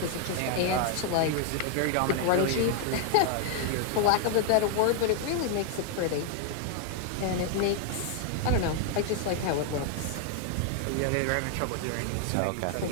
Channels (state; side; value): different; both; correlation 0.00